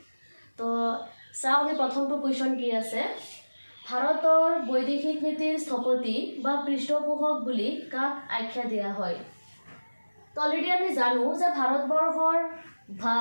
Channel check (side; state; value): both; inverted; correlation -1.00